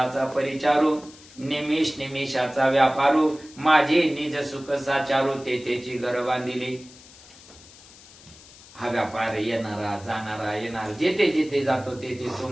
परिचारू, निमिष निमिषाचा व्यापारू, माझे निज सुख साचारू, तेची घर बांधिली. हा व्यापार येणारा जाणारा येणार, जेथे जेथे जातो तेथे तो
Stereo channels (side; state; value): left; noise; hiss, 22 dB below the sound